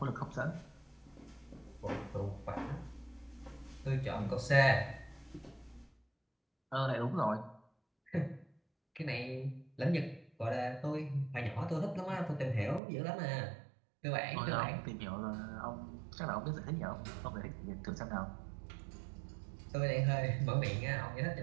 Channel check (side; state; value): left; drops out; at 12.8 s